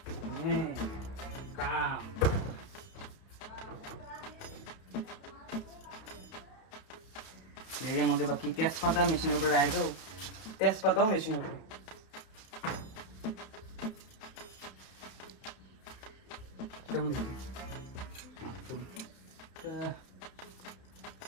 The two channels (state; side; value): late; right; 31 ms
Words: কাম। এর মধ্যে বাকি তেজপাতা মেশিনের উপরে রাখে দাও, তেজপাতাও মেশিনের উপরে। কেমন দেখি